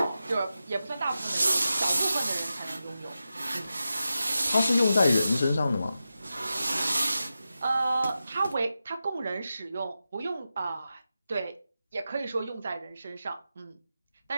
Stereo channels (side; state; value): both; inverted; correlation -0.91